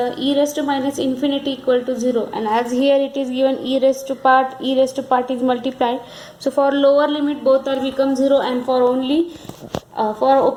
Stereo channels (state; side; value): identical; both; correlation 1.00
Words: e raised to minus infinity equal to 0, and as here it is given e raised to part is multiplied. So for lower limit both are become 0, and for only for